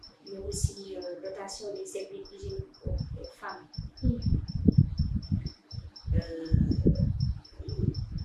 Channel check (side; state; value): both; identical; correlation 1.00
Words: mais aussi dotation des services hygiéniques aux femmes.